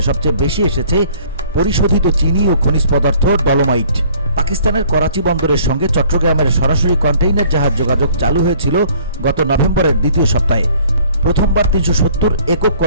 সবচেয়ে বেশি এসেছে পরিশোধিত চিনি ও খনিজ পদার্থ ডলোমাইট। পাকিস্তানের করাচি বন্দরের সঙ্গে চট্টগ্রামের সরাসরি কন্টেইনার জাহাজ যোগাযোগ চালু হয়েছিল গত নভেম্বরের দ্বিতীয় সপ্তাহে। প্রথমবার 370 একক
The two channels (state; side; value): inverted; both; correlation -0.56